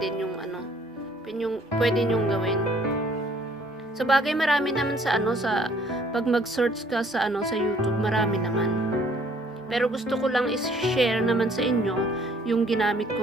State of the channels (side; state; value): both; normal; correlation 0.60